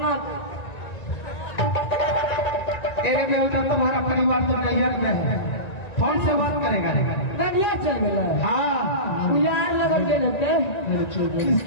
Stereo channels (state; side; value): late; right; 1.9 ms